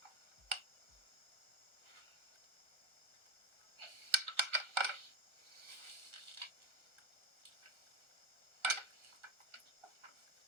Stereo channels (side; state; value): left; late; 1.4 ms